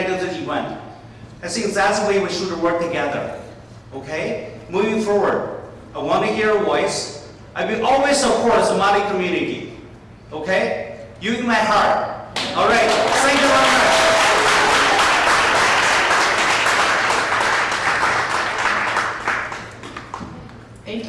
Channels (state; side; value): identical; both; correlation 1.00